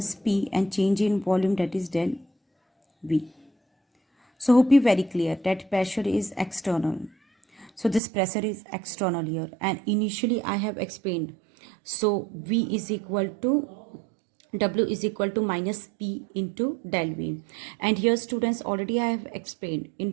P and change in volume, that is del V. So hope you very clear that pressure is external. So this pressure is external here, and initially I have explained. So V is equal to, W is equal to minus P into del V. And here, students, already I have explained in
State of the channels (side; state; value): left; drops out; at 8.0 s